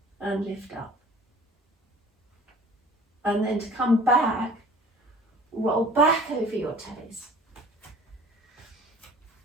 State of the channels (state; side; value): normal; both; correlation 0.47